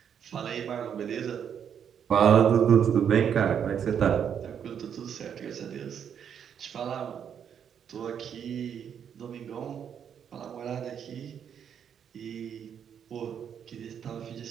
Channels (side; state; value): left; quieter; 8.2 dB